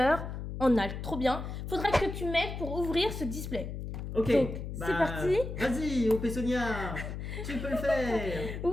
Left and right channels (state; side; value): noise; left; hum, 6 dB below the sound